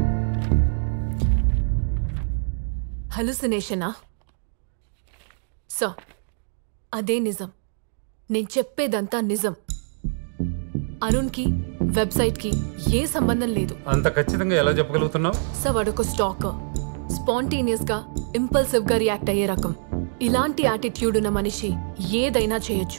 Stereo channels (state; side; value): silent; left; digital silence